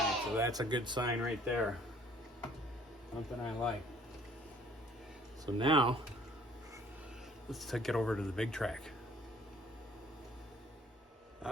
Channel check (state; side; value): normal; both; correlation 0.56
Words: so that's a good sign right there. Something I like. So now, let's take it over to the big track.